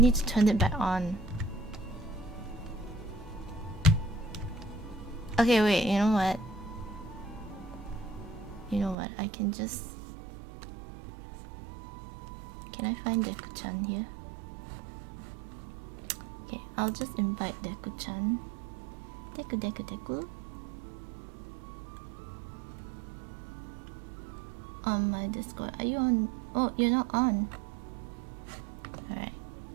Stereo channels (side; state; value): left; drops out; at 9.0 s